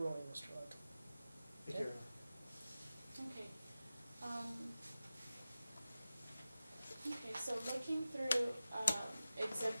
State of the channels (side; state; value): both; inverted; correlation -0.94